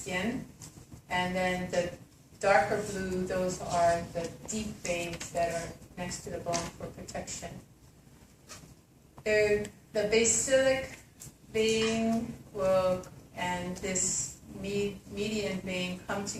And then the darker blue, those are the deep veins that are next to the bone for protection. The basilic vein and this median vein come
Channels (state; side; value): identical; both; correlation 1.00